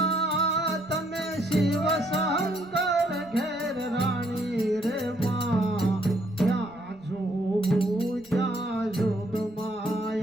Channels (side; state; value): right; noise; rumble, 28 dB below the sound